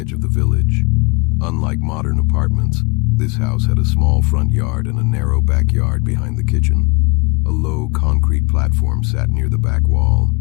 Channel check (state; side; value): quieter; right; 29.2 dB